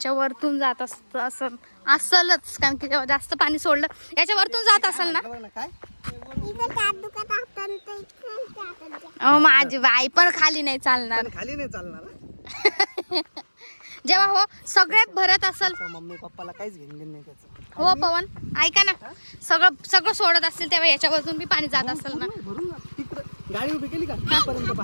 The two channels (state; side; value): inverted; both; correlation -1.00